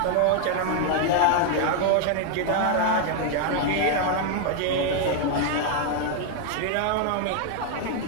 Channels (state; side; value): different; both; correlation 0.00